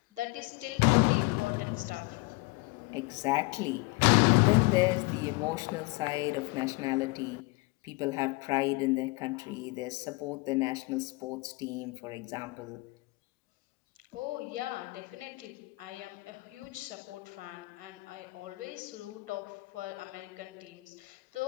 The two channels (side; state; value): right; quieter; 25.4 dB